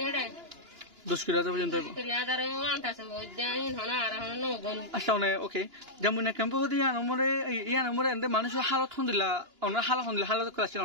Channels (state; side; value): late; left; 2.9 ms